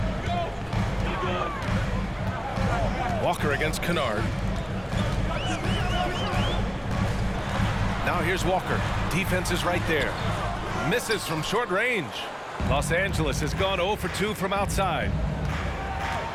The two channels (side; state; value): both; identical; correlation 1.00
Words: Walker against Kennard. Now here's Walker. Defense is right there. Misses from short range. Los Angeles has gone 0 for 2 from outside.